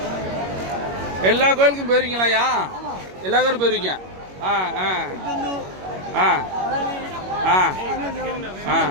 எல்லா கோயிலுக்கும் போயிருவீங்களாயா? எல்லா கோயிலும் போயிருவீங்க? ஆ ஆ ஆ ஆ ஆ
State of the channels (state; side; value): late; left; 21 ms